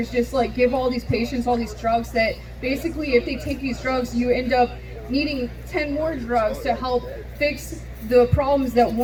just like give all these patients all these drugs that basically, if they take these drugs, you end up needing 10 more drugs to help fix the problems that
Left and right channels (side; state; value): both; identical; correlation 1.00